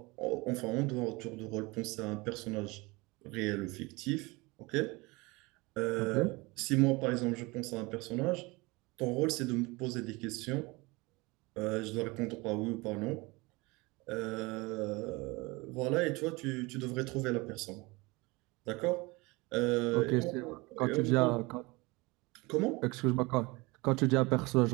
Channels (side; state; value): left; quieter; 24.4 dB